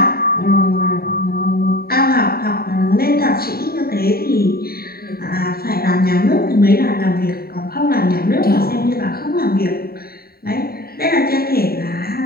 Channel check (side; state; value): right; late; 0.44 ms